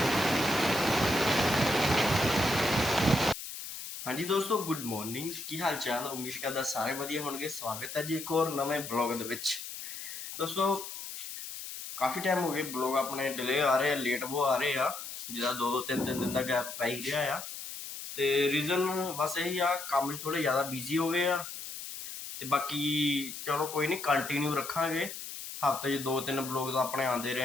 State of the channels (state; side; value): noise; left; hiss, 9 dB below the sound